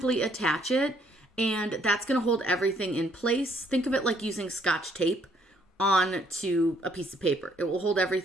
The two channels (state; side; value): normal; both; correlation 0.67